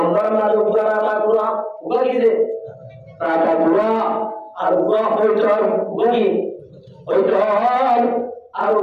না উপর আলা পুরা উগি দে টাকা পুরা আর উগা হইতর উগি হইতর আর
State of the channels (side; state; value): both; identical; correlation 1.00